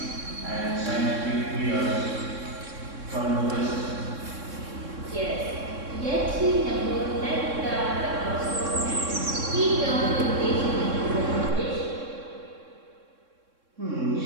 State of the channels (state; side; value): late; left; 3.6 ms